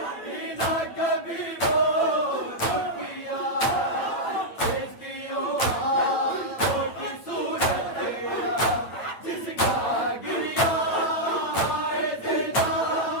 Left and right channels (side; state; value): right; late; 8.6 ms